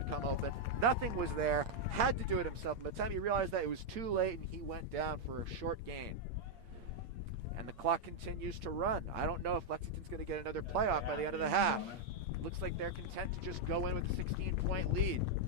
come open. Nothing was there. Had to do it himself. By the time he realized that, it was too late, and he went down for a short gain. And the clock continues to run. I don't know if Lexington's going to get another playoff by the end of the half. Looks like they're content to just go in with a 16-point lead.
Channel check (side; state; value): left; late; 8.6 ms